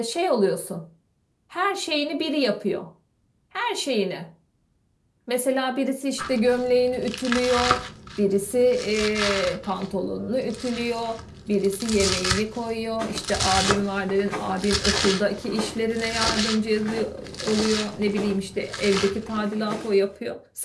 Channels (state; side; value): identical; both; correlation 1.00